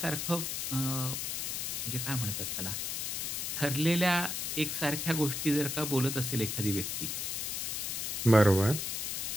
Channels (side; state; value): left; noise; hiss, 2 dB below the sound